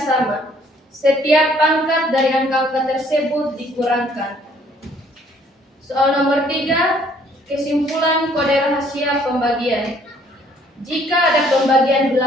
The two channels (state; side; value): normal; both; correlation 0.61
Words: Setiap pangkat dari angka-angka tersebut dikurangkan. Soal nomor 3, kesimpulan kode rahasia pembagian. Jika ada pembagian